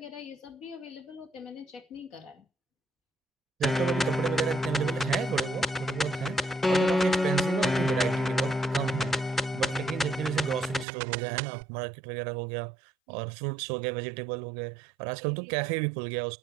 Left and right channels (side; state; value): left; drops out; at 10.9 s